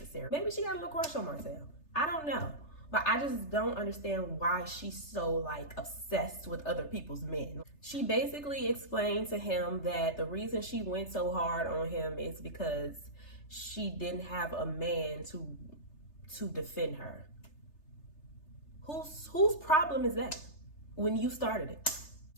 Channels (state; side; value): late; right; 3.3 ms